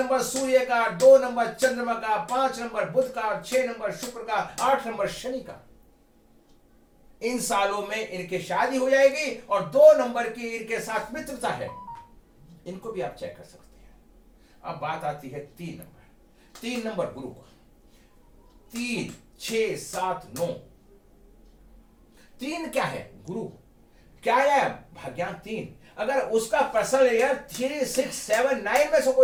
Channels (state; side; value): identical; both; correlation 1.00